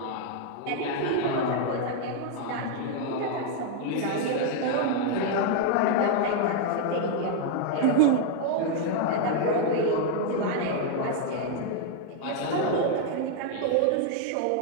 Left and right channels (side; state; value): both; different; correlation 0.00